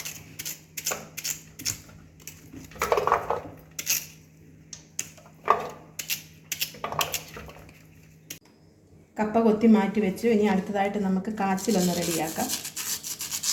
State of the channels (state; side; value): identical; both; correlation 1.00